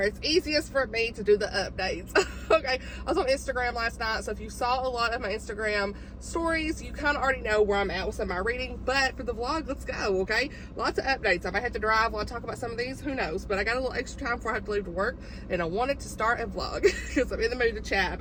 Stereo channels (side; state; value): both; identical; correlation 1.00